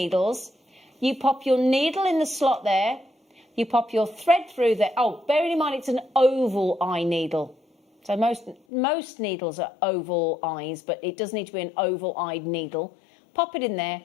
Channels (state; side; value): drops out; right; at 8.6 s